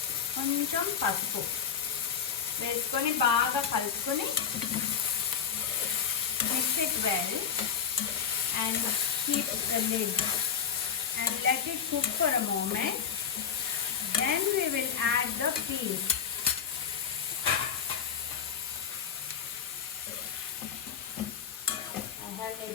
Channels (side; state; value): right; quieter; 7.6 dB